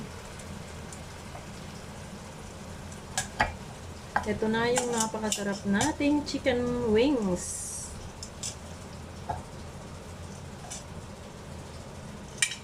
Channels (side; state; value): both; identical; correlation 1.00